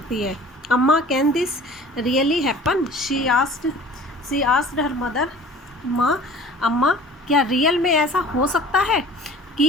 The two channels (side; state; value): both; normal; correlation 0.46